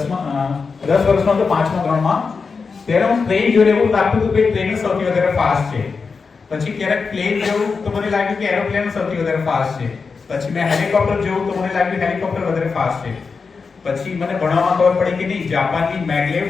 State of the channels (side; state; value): right; quieter; 4.9 dB